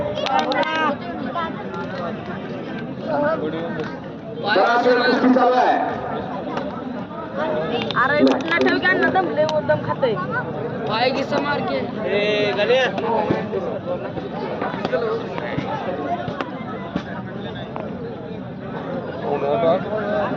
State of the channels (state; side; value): identical; both; correlation 1.00